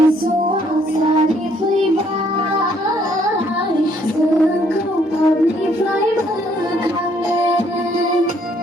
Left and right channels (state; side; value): normal; both; correlation 0.66